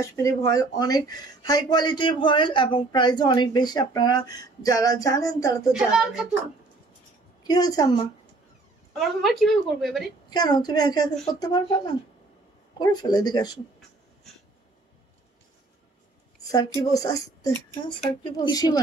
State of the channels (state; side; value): quieter; left; 3.3 dB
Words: ভয়েল অনেক হাই কোয়ালিটির ভয়েল, এবং প্রাইসও অনেক বেশি, আপনারা যারা জানেন তারা তো জানেন। কি হয়েছে আম্মা? আমার হোমওয়ার্ক কিভাবে করবো এবারে? কেন তুমি একা একা করতে পারবে না? করে ফেলে, এদিকে আসো। স্যার কি বলছে? আসতে, হ্যাঁ, স্যার কি বলছে? কিছুই